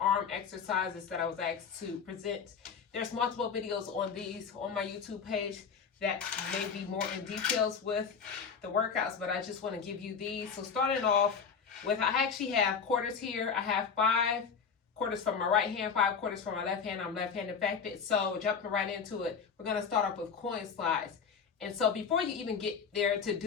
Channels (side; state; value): right; quieter; 6.2 dB